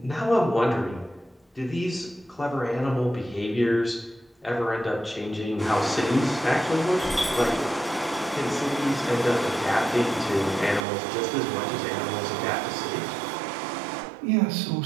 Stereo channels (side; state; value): left; drops out; at 10.8 s